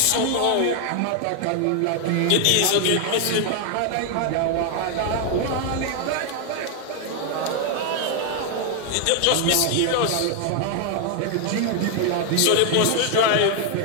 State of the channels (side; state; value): both; different; correlation 0.00